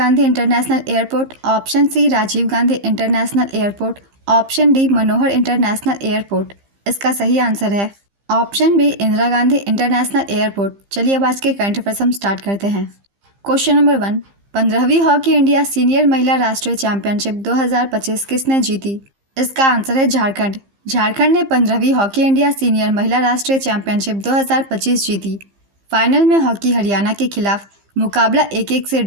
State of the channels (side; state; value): left; late; 15 ms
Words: international airport, option C Rajiv Gandhi international airport, option D Manohar international airport. इसका सही आंसर है option B Indira Gandhi international airport. चलिए अब आज के करंट अफेयर्स हम स्टार्ट करते हैं। क्वेश्चन नंबर 1, 15वीं हॉकी इंडिया सीनियर महिला राष्ट्रीय चैंपियनशिप 2025 किसने जीती? इसका आंसर है झारखंड। झारखंड ने 15वीं हॉकी इंडिया सीनियर महिला राष्ट्रीय चैंपियनशिप 2025 जीती। फाइनल में हॉकी हरियाणा के खिलाफ मुकाबला 1-1 से